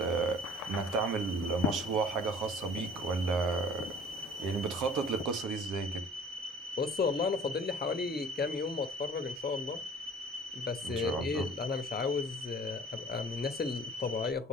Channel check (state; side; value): normal; both; correlation 0.49